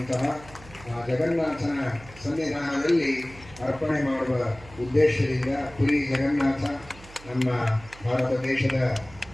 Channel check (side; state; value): right; noise; hum, 20 dB below the sound